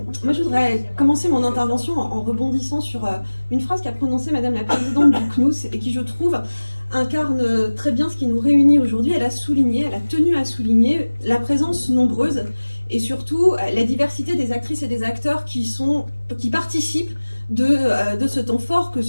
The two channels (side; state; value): both; inverted; correlation -1.00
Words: moi je voudrais commencer mon intervention en rebondissant sur une phrase qu'a prononcée Madame la Présidente du CNUS et qui, je trouve, incarne très bien ce qui nous réunit aujourd'hui. Elle a tenu à souligner la présence nombreuse et surtout la diversité des actrices et des acteurs qui participent de ce temps fort, que